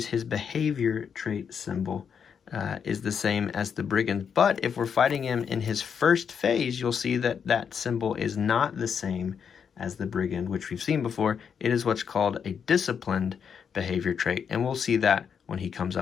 his behavior trait symbol. Is the same as the brigand, but if we're fighting him in his first phase, you'll see that that symbol is not the same as the brigand, which we've seen before. It is what's called a disciplined behavior trait, and we'll see that when he comes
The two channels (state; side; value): quieter; right; 7.1 dB